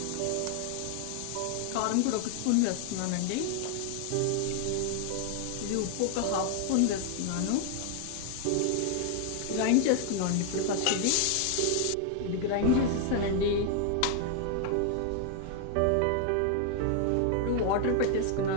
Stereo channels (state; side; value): different; both; correlation 0.00